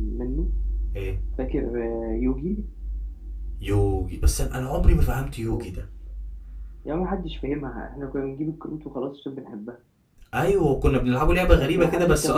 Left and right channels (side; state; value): both; identical; correlation 1.00